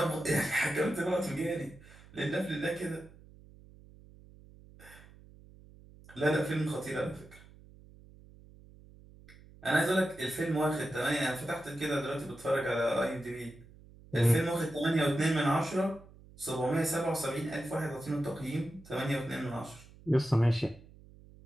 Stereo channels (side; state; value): right; noise; hum, 22 dB below the sound